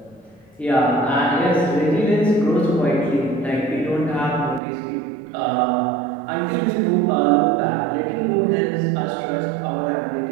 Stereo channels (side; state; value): left; drops out; at 4.6 s